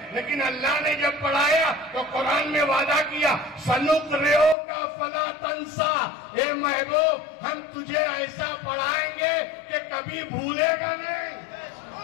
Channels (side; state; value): right; drops out; at 4.5 s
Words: لیکن اللہ نے جب پڑھایا تو قرآن میں وعدہ کیا سنقرئو کا فلا تنسا. اے محبوب ہم تجھے ایسا پڑھائیں گے کہ کبھی بھولے گا نہیں.